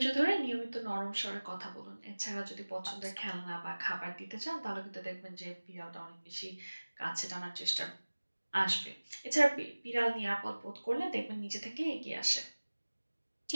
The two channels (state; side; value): inverted; both; correlation -1.00